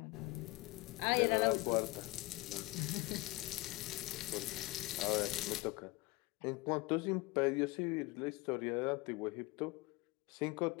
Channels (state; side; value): quieter; right; 22.2 dB